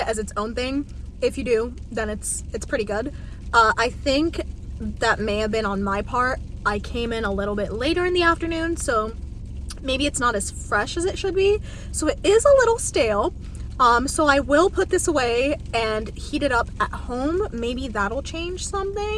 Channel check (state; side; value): identical; both; correlation 1.00